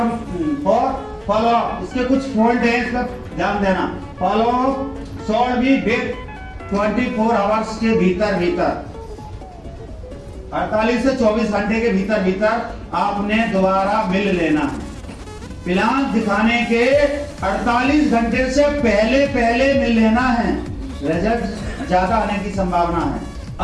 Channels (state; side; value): identical; both; correlation 1.00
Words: फॉलो अप। इसके कुछ पॉइंट है, इस पर ध्यान देना। Follow up short be with 24 hours के भीतर 48 से 24 घंटे के भीतर आपने दोबारा मिल लेना है। प्लान दिखाने के 48 घंटे से पहले मिल लेना है। रिजल्ट ज्यादा आने की संभावना है।